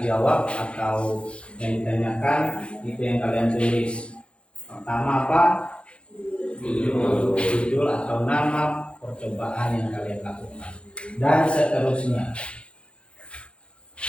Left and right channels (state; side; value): late; right; 0.059 ms